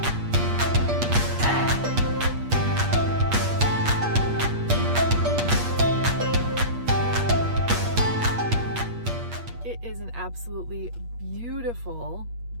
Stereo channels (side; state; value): left; late; 8.4 ms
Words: It is an absolutely beautiful